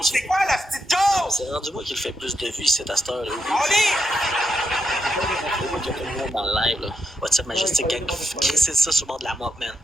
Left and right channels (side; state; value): both; normal; correlation 0.82